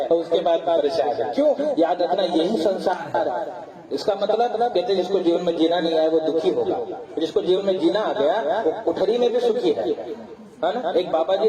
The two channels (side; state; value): both; identical; correlation 1.00